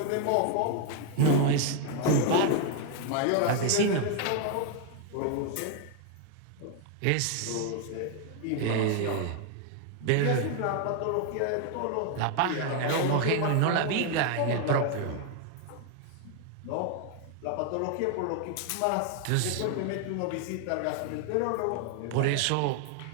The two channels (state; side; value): different; both; correlation 0.01